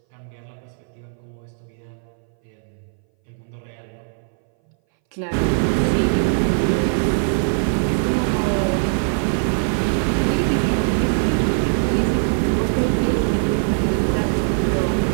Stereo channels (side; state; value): left; silent; 61 dB below the other